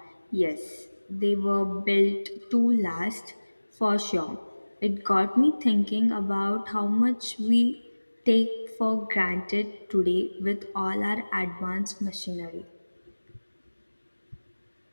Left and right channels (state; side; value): inverted; both; correlation -1.00